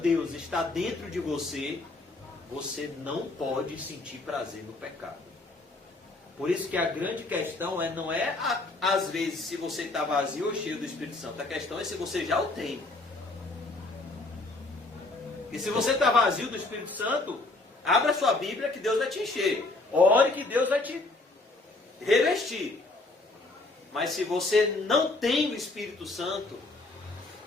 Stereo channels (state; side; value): quieter; right; 3.1 dB